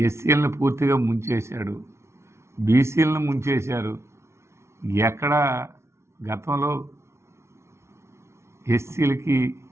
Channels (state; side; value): late; left; 0.13 ms